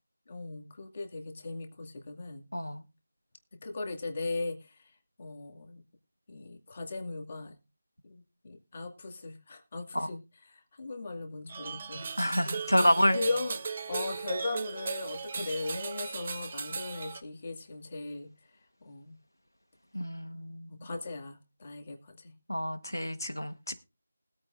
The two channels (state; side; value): inverted; both; correlation -0.93